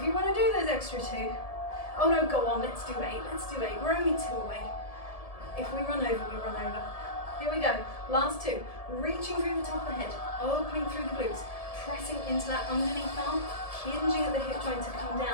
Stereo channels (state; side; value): late; right; 1.7 ms